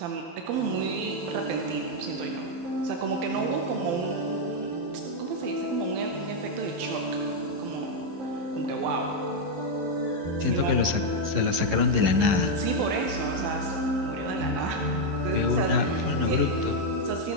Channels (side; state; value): left; late; 11 ms